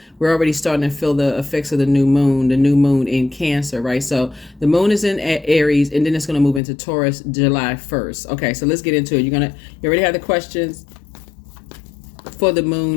starting to feel the effects of the new moon in Cancer, right? So the moon is in Aries, and then it's going to move into Taurus July 1st. Okay, so let's get into it. You already have the questions for the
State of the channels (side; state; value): right; drops out; at 6.6 s